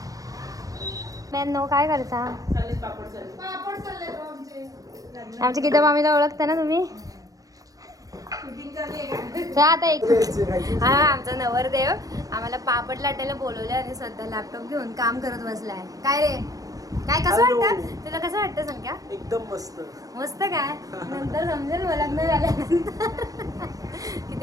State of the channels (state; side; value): late; left; 0.17 ms